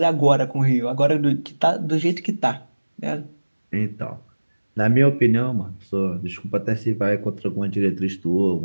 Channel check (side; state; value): both; inverted; correlation -1.00